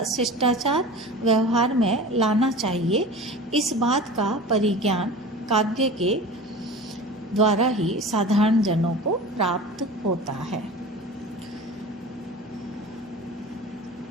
शिष्टाचार व्यवहार में लाना चाहिए, इस बात का परिज्ञान काव्य के द्वारा ही साधारण जनों को प्राप्त होता है।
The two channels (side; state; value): both; normal; correlation 0.36